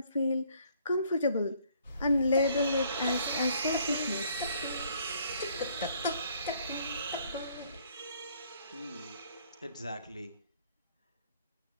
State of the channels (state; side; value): inverted; both; correlation -0.63